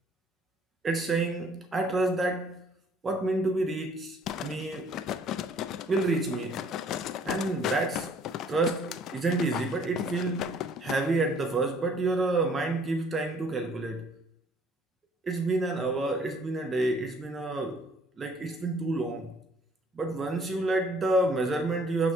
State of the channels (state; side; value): normal; both; correlation 0.59